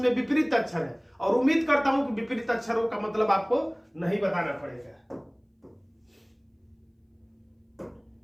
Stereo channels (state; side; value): identical; both; correlation 1.00